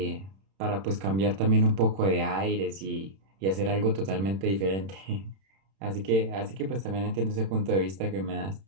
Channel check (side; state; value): left; late; 31 ms